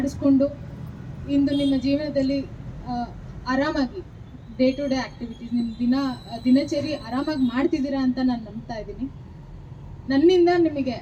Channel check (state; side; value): identical; both; correlation 1.00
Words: ಇಂದು ನಿಮ್ಮ ಜೀವನದಲ್ಲಿ ಆರಾಮಾಗಿ ಡೇ ಟು ಡೇ ಆ್ಯಕ್ಟಿವಿಟೀಸ್ ನಿಮ್ಮ ದಿನಚರಿ ಆರಾಮಾಗಿ ಮಾಡ್ತಿದ್ದೀರಾ ಅಂತ ನಾನು ನಂಬ್ತಾ ಇದ್ದೀನಿ. ನನ್ನಿಂದ ನಿಮಗೆ